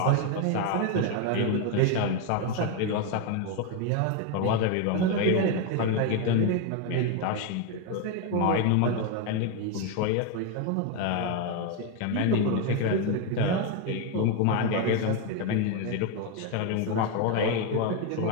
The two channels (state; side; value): different; both; correlation 0.01